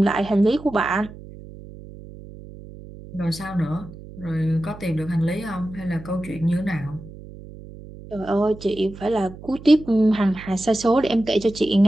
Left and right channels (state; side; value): noise; right; hum, 16 dB below the sound